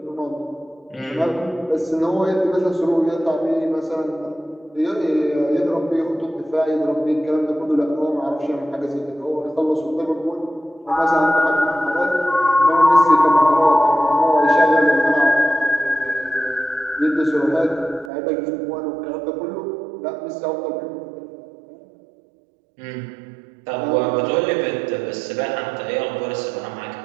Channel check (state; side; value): drops out; left; at 18.1 s